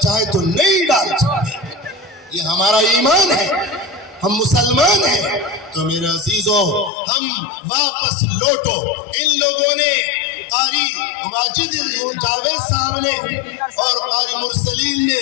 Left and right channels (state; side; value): drops out; right; at 6.9 s